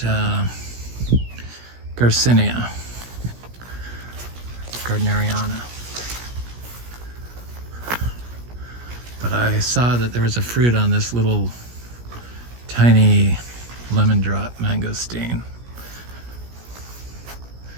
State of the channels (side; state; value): left; late; 17 ms